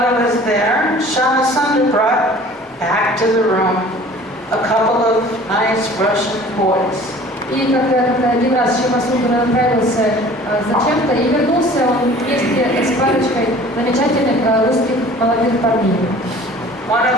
he was there, Shama Sundar brought back to the room a couple of nice Russian boys. И когда один раз Шама Сундар отправился зачем-то и вернулся он вместе с парочкой замечательных русских молодых парней. One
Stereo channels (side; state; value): both; normal; correlation 0.47